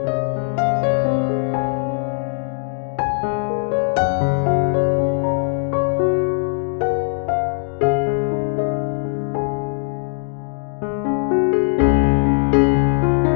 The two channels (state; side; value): silent; right; digital silence